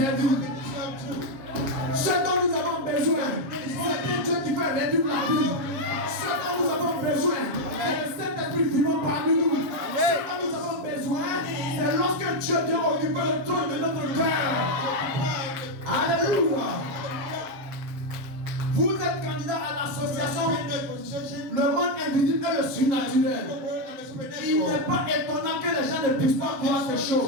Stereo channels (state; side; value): late; left; 7.3 ms